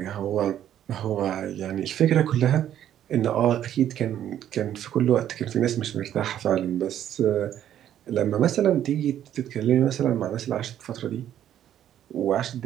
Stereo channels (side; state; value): left; quieter; 10.9 dB